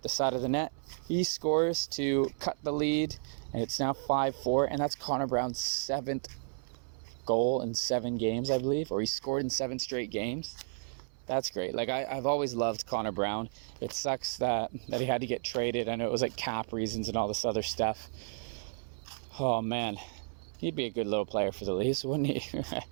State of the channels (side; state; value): left; silent; 56 dB below the other